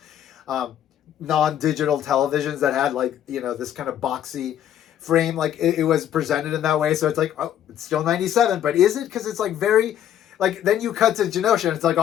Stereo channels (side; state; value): right; quieter; 10.7 dB